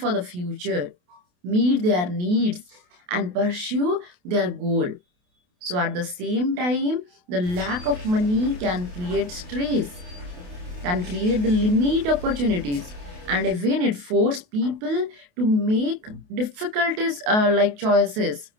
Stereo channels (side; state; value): left; late; 28 ms